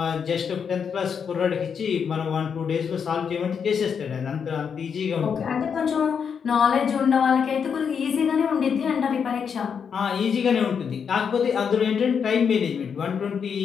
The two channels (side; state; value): right; quieter; 6.8 dB